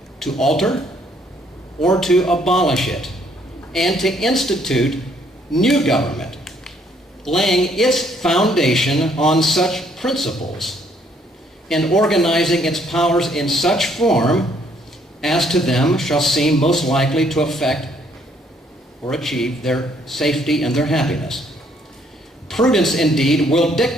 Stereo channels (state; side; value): normal; both; correlation 0.66